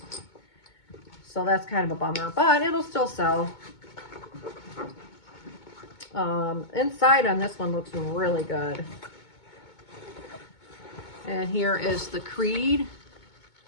So that's kind of a bummer, but it'll still sell. Inside on this one looks really good. And here is the Creed.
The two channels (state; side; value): late; right; 2.2 ms